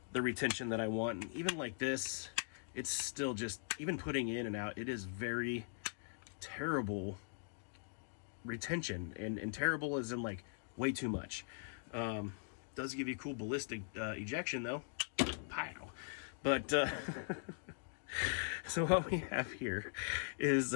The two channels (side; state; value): right; silent; digital silence